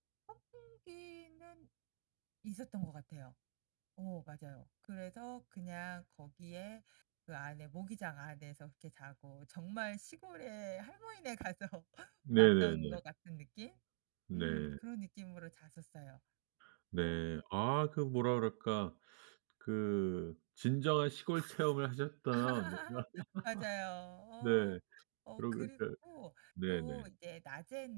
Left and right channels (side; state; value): left; silent; digital silence